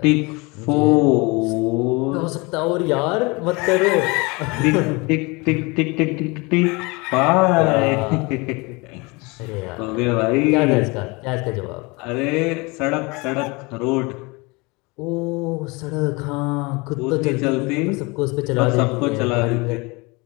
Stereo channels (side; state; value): right; quieter; 26.5 dB